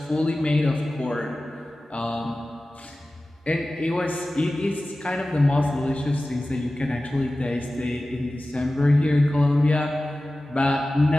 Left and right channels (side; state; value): both; normal; correlation 0.96